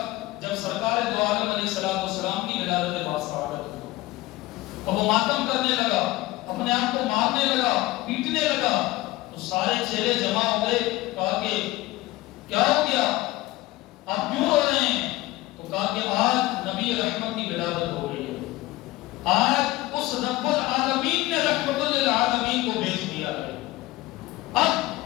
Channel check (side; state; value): right; quieter; 18.3 dB